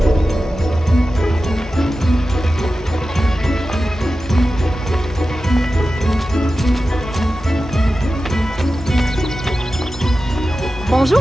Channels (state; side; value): normal; both; correlation 0.93